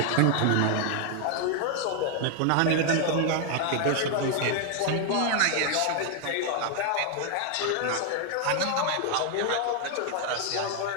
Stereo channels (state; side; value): different; both; correlation 0.00